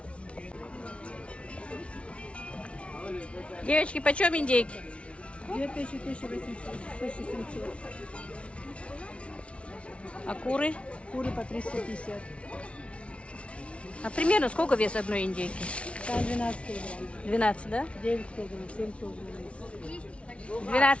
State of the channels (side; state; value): right; late; 0.061 ms